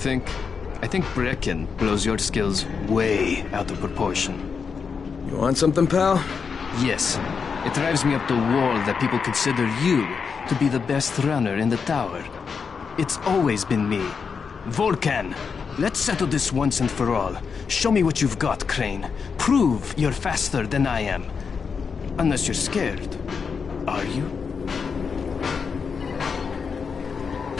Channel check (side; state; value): right; quieter; 5.8 dB